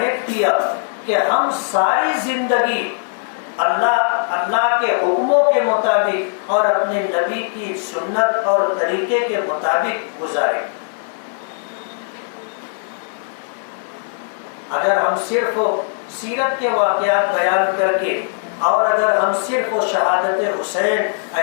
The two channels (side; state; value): right; silent; digital silence